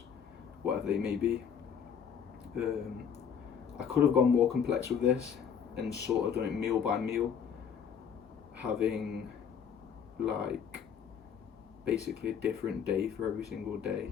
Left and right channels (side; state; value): right; quieter; 7.5 dB